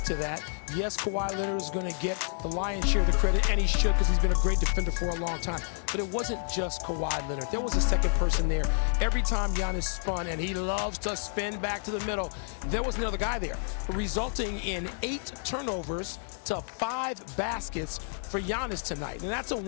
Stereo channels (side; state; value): right; silent; digital silence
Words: to that. Yes, Kawhi Leonard is going to get the lion's share of the credit, and he should because he's been a great defender for a long time. But it wasn't just Kawhi Leonard. There was a second person there. Every time Giannis spun, and he loves to spin back to the middle, there was another guy there, resulting in 8 turnovers to 5 baskets for Giannis tonight. And that's a